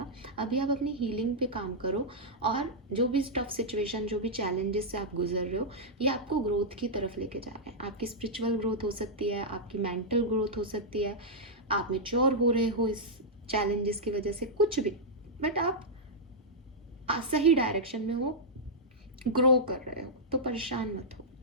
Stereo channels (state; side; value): normal; both; correlation -0.07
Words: अभी आप अपनी हीलिंग पे काम करो और जो भी टफ सिचुएशन, जो भी चैलेंजेस से आप गुजर रहे हो, ये आपको ग्रोथ की तरफ लेके जा रहे हैं। आपकी स्पिरिचुअल ग्रोथ हो सकती है, आपकी मेंटल ग्रोथ हो सकती है, आप मेच्योर हो रहे हो इस चैलेंजेस की वजह से, कुछ भी, बट आप सही डायरेक्शन में हो, ग्रो कर रहे हो, तो परेशान मत हो।